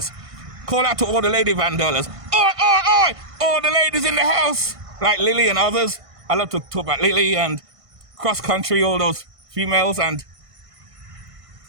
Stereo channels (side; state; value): left; late; 1.5 ms